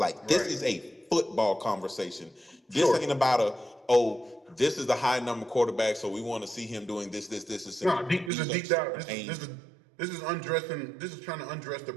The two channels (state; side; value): drops out; left; at 8.3 s